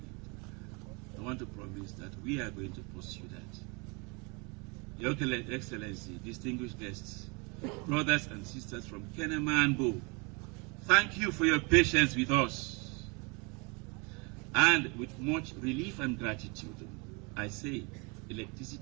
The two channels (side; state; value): left; quieter; 30.5 dB